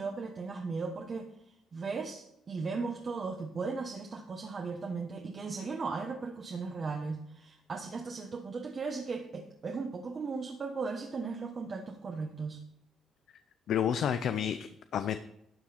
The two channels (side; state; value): both; normal; correlation 0.71